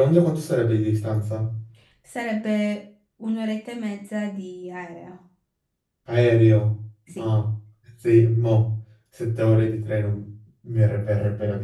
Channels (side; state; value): both; identical; correlation 1.00